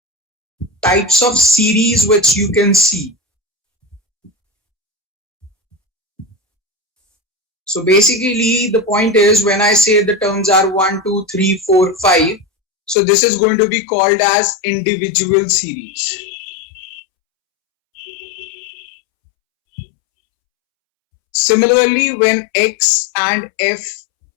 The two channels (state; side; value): drops out; right; at 13.0 s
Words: types of series which you can see. So basically the point is when I say the terms are 1, 2, 3, 4, 5, so this is going to be called as individual series. Similarly, when x and